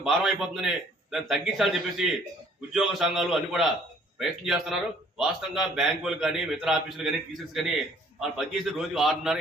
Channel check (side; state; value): both; normal; correlation 0.59